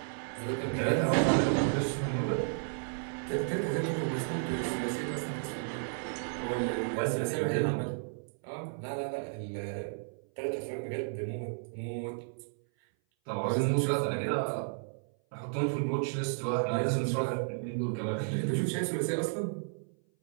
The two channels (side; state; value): left; silent; 56 dB below the other